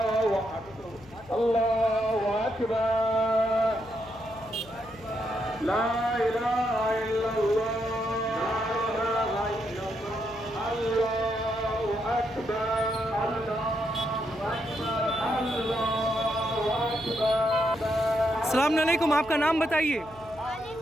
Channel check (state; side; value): noise; left; hum, 22 dB below the sound